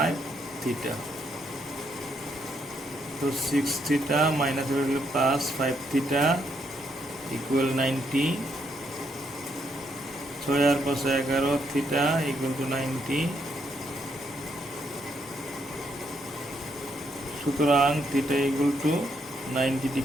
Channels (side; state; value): both; normal; correlation 0.75